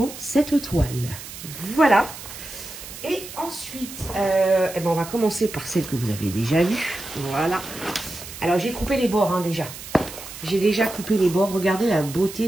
cette toile. Voilà. Et ensuite, eh ben, on va commencer par celle que vous avez déjà vue. Voilà. Alors, j'ai coupé les bords, hein, déjà. J'ai déjà coupé les bords. Regardez la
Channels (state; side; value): noise; right; hiss, 12 dB below the sound